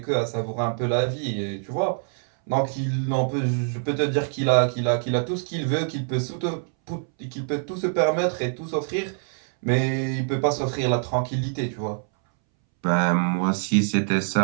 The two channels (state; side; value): silent; left; 62 dB below the other